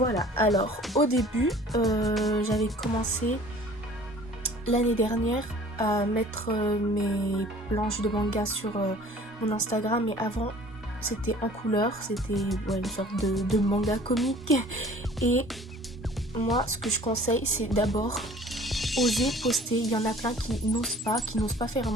alors au début j'avais commencé l'année dernière à mettre mes planches de manga sur mon Instagram, mais avant c'était en couleur, c'était une sorte de manga comique. Et moi ce que je conseille c'est d'abord oser poster. Il y en a plein qui n'osent pas faire un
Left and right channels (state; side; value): normal; both; correlation 0.49